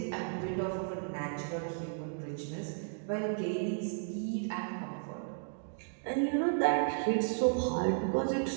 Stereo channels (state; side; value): silent; left; digital silence